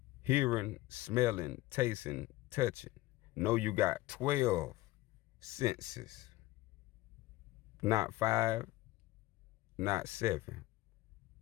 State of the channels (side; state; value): right; quieter; 17.9 dB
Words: hearing, smelling, tasting, touching. No, you got 12 senses. Not 5, not 7.